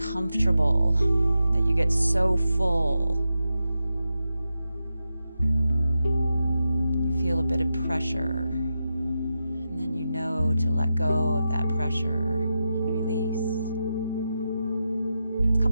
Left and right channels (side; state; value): both; inverted; correlation -0.89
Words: that you get so full. You feel a bit of pressure, and then you know to let go of that pressure and release. A